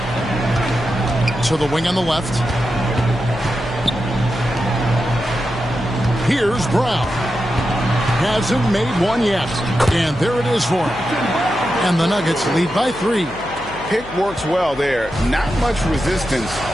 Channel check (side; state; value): left; noise; hum, 17 dB below the sound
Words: To the wing on the left. Here's Brown. Hasn't made one yet. And there it is for him. And the Nuggets lead by 3. Pick works well there. Not much resistance